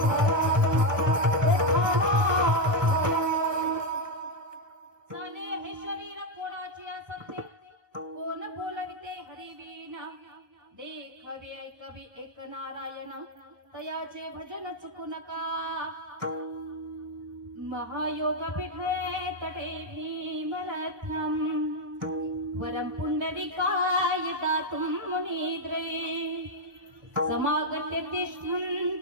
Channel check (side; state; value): left; late; 1.2 ms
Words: चाले हे शरीर कोणाची असते कोण बोलविते हरिवीणा देखवे ऐकवी एक नारायण तयाचे भजन चुकू नका महायोग पीठे तटे भीमरथम वरम पुंडरीकाय दातुं मुनिद्रे समागत्य